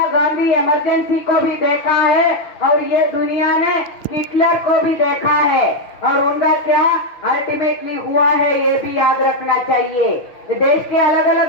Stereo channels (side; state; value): right; late; 6.2 ms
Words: गांधी इमरजेंसी को भी देखा है और ये दुनिया ने हिटलर को भी देखा है और उनका क्या अल्टीमेटली हुआ है ये भी याद रखना चाहिए। देश के अलग